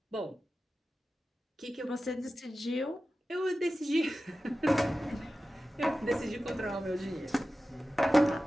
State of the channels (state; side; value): normal; both; correlation 0.94